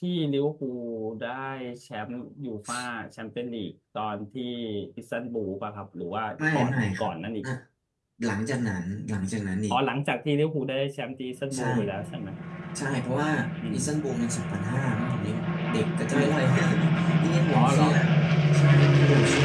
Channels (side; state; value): both; identical; correlation 1.00